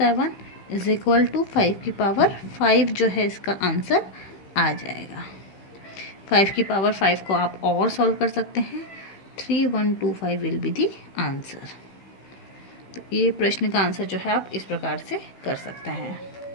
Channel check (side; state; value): right; late; 15 ms